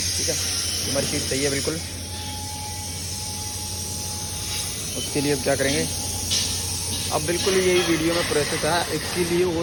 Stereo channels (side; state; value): both; identical; correlation 1.00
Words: ठीक है। हमारी शीट सही है बिल्कुल। उसके लिए अब क्या करेंगे, अब बिल्कुल यही वीडियो में प्रोसेस है। इसके लिए